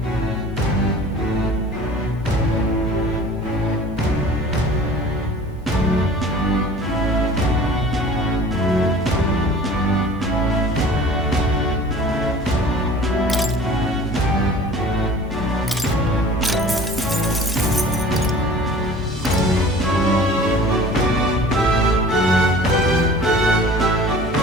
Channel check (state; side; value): normal; both; correlation 0.44